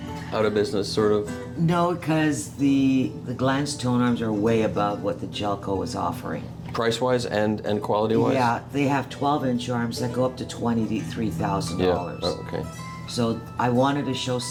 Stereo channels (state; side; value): identical; both; correlation 1.00